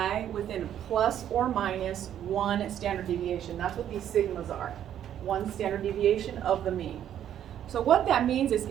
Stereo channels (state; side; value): quieter; left; 10.4 dB